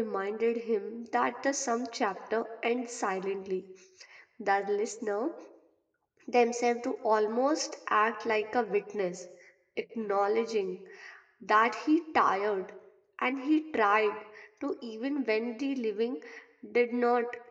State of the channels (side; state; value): both; identical; correlation 1.00